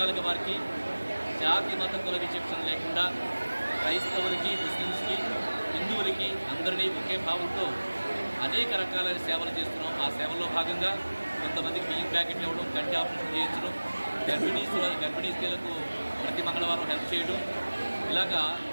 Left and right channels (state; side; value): inverted; both; correlation -1.00